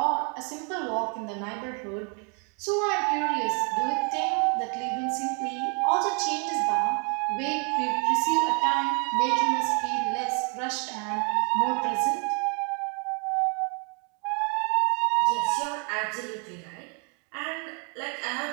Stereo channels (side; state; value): left; quieter; 34.6 dB